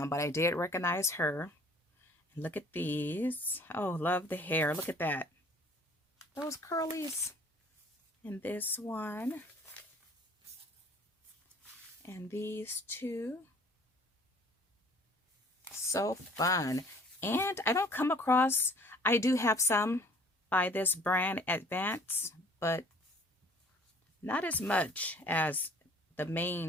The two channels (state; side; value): normal; both; correlation 0.54